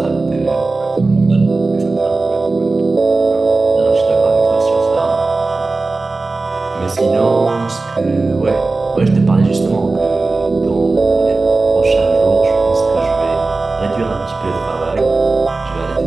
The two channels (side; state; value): left; quieter; 3.5 dB